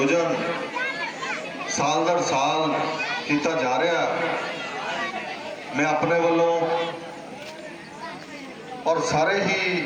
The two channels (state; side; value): identical; both; correlation 1.00